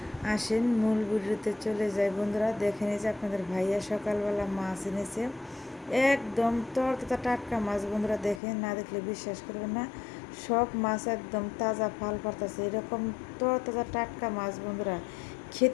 আসেন মূল ভিডিওতে চলে যায় বন্ধুরা। দেখেন এই যে আপনাদের ভাইয়া সকালবেলা মাছ এনেছে, একদম তরতাজা টাটকা মাছ বন্ধুরা। দেখেন, না দেখলে বিশ্বাস করবেন না, সব মাছ একদম তাজা ফাল পারতাছে, এরকম তরতাজা টাটকা মাছ বন্ধুরা।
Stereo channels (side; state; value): right; drops out; at 8.4 s